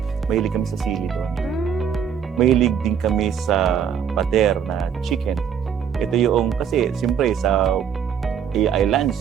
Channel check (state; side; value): quieter; left; 7.8 dB